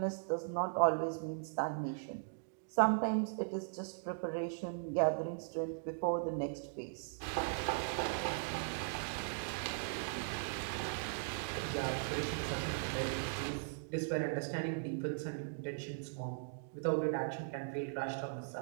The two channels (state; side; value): silent; left; digital silence